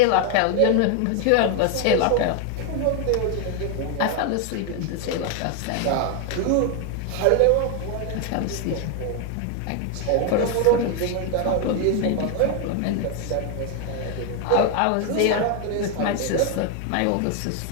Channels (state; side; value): different; both; correlation 0.01